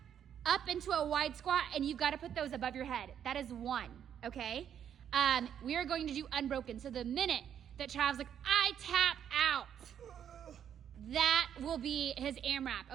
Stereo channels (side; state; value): left; quieter; 9.1 dB